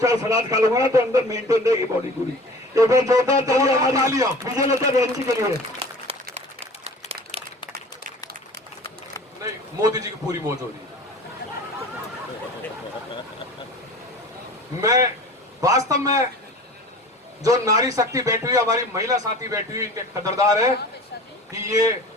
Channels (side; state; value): both; normal; correlation 0.41